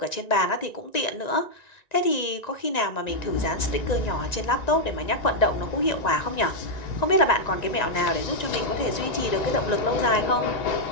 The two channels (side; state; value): right; late; 1.9 ms